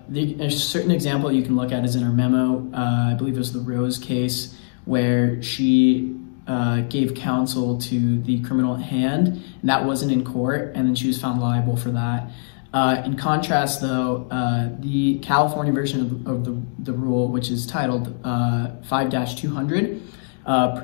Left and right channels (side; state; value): right; silent; digital silence